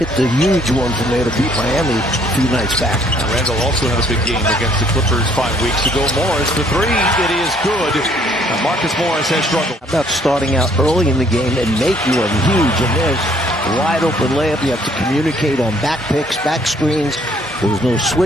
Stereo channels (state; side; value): normal; both; correlation 0.63